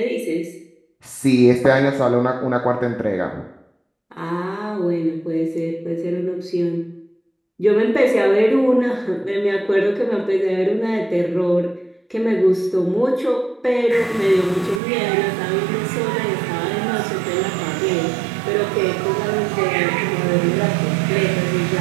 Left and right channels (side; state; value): left; drops out; at 14.8 s